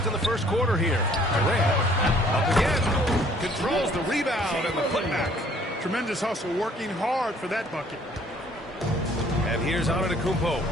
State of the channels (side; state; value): both; normal; correlation 0.58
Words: in the first quarter here. Durant up again. Controls the rebound and the putback. Tremendous hustle, working hard for that bucket. And here's